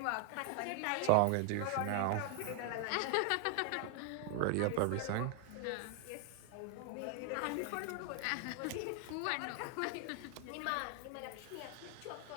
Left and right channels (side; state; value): both; different; correlation 0.00